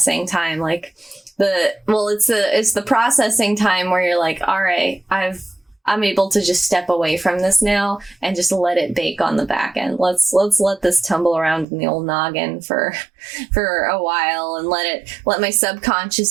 time, like it's the processing time where you're like, all right, I'm able to just step away from this now and just let it bake on the back end. Let's let this tumble around in the old noggin for a while and let my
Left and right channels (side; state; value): left; drops out; at 11.7 s